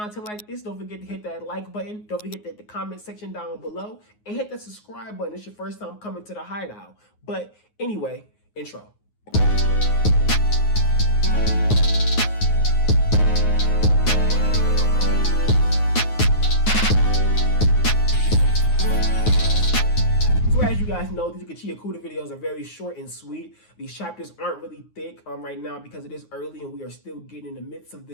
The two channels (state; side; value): late; right; 9.5 ms